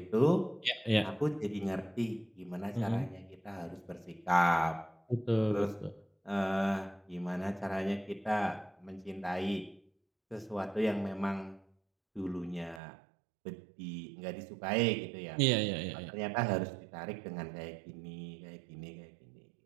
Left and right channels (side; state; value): left; drops out; at 12.8 s